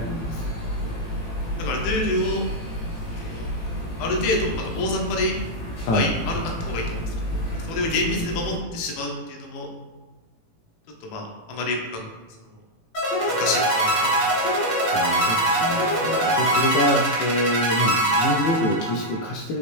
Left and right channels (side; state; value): right; late; 18 ms